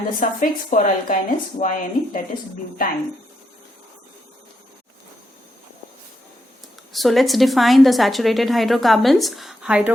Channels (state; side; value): normal; both; correlation 0.81